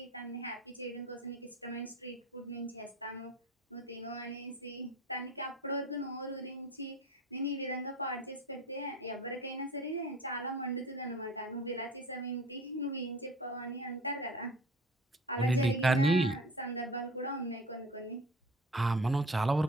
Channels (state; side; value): normal; both; correlation 0.41